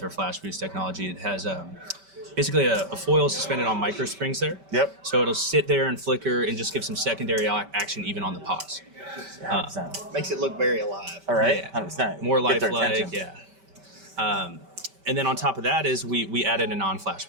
our flash boost technology, it has basically a foil suspended on micro springs there. Yep. So it'll sit there and flicker and just give some secondary action even on the pause. 100%. Makes it look very alive. All right. Yeah. 100%. More Get their lifelike, attention. yeah. And then on top of that is we added a non-flash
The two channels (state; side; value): late; left; 5.2 ms